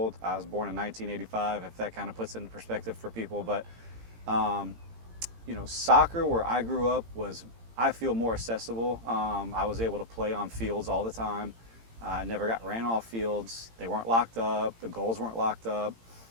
I was born in 1985, if that kind of puts it into perspective for people, but soccer where I grew up was, I feel, more accessible. I was able to play on fields all the time. I never got ran off fields. They weren't locked up. The goals weren't locked up.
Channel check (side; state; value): left; late; 18 ms